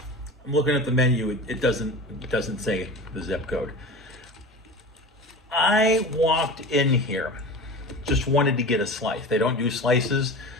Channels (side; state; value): both; normal; correlation 0.32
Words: I'm looking at the menu. It doesn't say the zip code. I walked in here, just wanted to get a slice. They don't do slices,